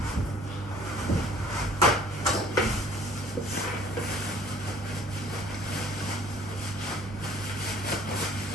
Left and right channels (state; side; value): normal; both; correlation 0.55